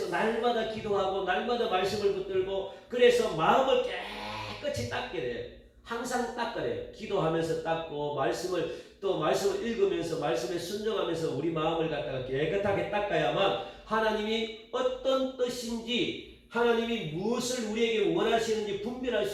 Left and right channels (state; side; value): identical; both; correlation 1.00